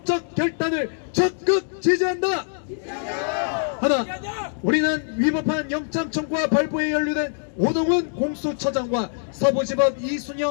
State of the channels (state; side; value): silent; right; digital silence